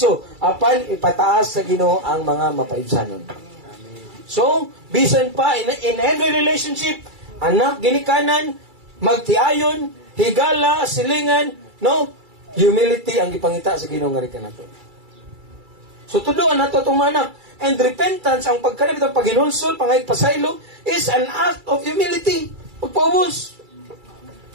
apan ipataas sa Ginoo ang mga mapaibsanon. So, bisan pa in every relationship, anak ginikanan, magtiayon, higala, silingan, no? Humility ang gipangita sa Ginoo nga rikan nato. So tuduan nato tong mga anak. And repentance, ang pagkanab itong paghinulsol, pangaypasaylo, is an act of humility. Pagpaubos.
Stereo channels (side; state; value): left; late; 2.3 ms